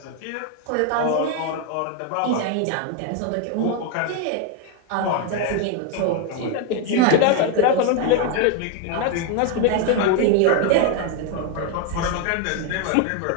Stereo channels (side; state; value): both; different; correlation 0.01